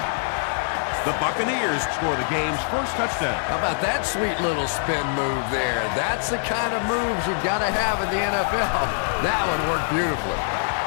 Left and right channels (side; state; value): right; silent; 63 dB below the other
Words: The Buccaneers score the game's first touchdown. How about that sweet little spin move there? That's the kind of moves you've got to have in the NFL. That one worked beautifully.